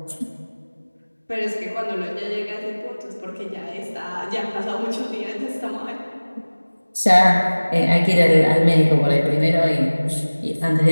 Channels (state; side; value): inverted; both; correlation -1.00